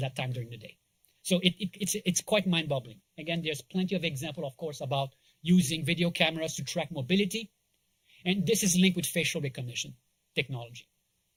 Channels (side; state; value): both; identical; correlation 1.00